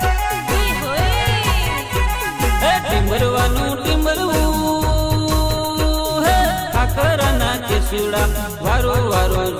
टिंबरवानू टिंबरवू खाखराना केसुड़ा वरो वरो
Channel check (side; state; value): both; identical; correlation 1.00